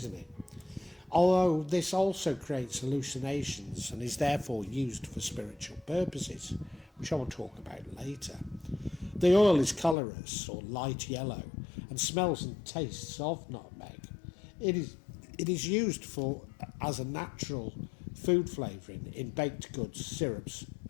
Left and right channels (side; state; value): right; drops out; at 10.0 s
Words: Although this also creates hallucinations and is therefore used for spiritual purposes, which I will talk about later. The oil is colourless or light yellow and smells and tastes of nutmeg. It is used as a natural food flavouring in baked goods, syrups,